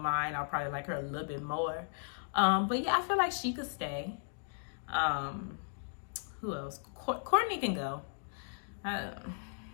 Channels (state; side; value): silent; right; digital silence